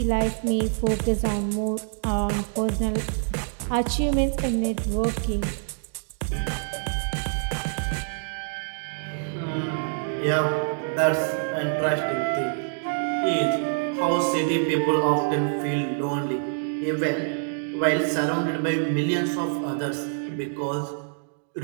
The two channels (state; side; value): silent; left; digital silence